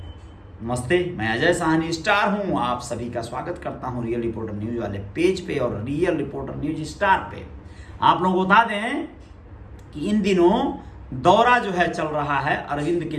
नमस्ते, मैं अजय साहनी स्टार हूं। आप सभी का स्वागत करता हूं रियल रिपोर्टर न्यूज वाले पेज पे और रियल रिपोर्टर न्यूज स्टार पे। आप लोगों को बता दें कि इन दिनों दौरा जो है चल रहा है अरविंद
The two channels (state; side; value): identical; both; correlation 1.00